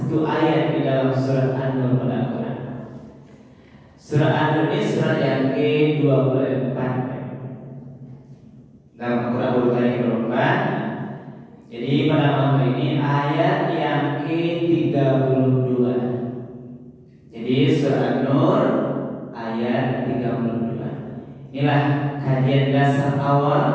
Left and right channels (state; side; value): identical; both; correlation 1.00